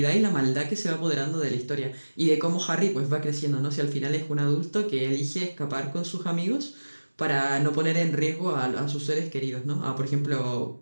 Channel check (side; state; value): both; inverted; correlation -1.00